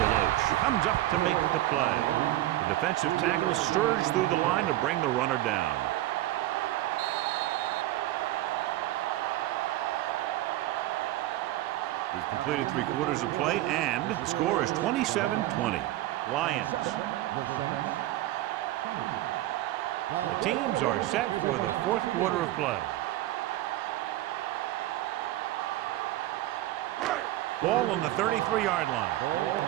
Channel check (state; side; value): quieter; left; 15.6 dB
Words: Deloach comes up to make the play. The defensive tackle surged through the line to bring the runner down. We've completed 3/4 of play, and the score is 27-20. Lions. The teams are set for the 4th quarter of play. Ball on the 33-yard line. Ball on